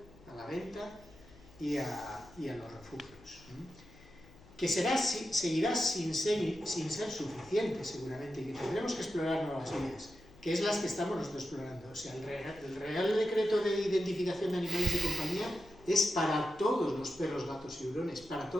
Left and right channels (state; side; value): noise; left; hum, 23 dB below the sound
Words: a la venta y a los refugios. Que seguirá sin ser suficiente seguramente y que tendremos que explorar nuevas vías, que es las que estamos nosotros explorando. O sea, el Real Decreto de Identificación de Animales de Compañía es para todos los perros, gatos y hurones, para